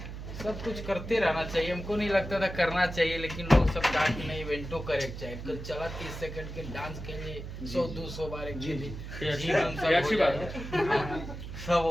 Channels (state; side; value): noise; right; hum, 9 dB below the sound